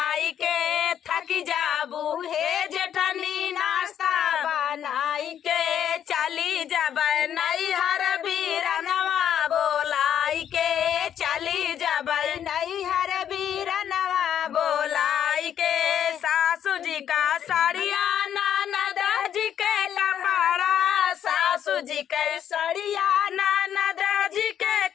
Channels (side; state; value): right; quieter; 9.6 dB